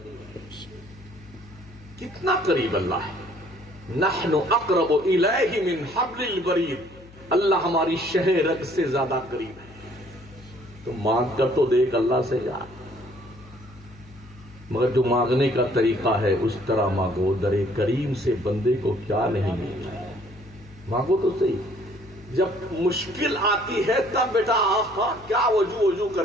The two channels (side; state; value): left; noise; hum, 22 dB below the sound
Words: ہوں۔ کتنا قریب اللہ ہے؟ نحن اقرب الیہ من حبل الورید، اللہ ہماری شہ رگ سے زیادہ قریب ہے۔ تو مانگ کر تو دیکھ اللہ سے یار، مگر جو مانگنے کا طریقہ ہے اس طرح مانگو، در کریم سے بندے کو کیا نہیں ملتا ہے، مانگو تو صحیح۔ جب مشکل آتی ہے تب بیٹا آہا کیا وضو کر